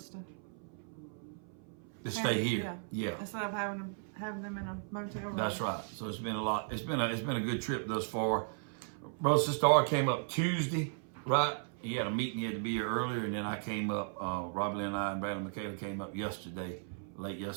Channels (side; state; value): left; silent; 54 dB below the other